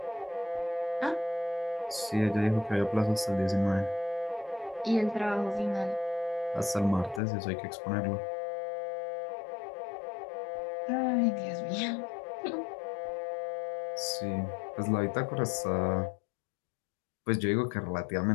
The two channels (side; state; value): right; drops out; at 7.2 s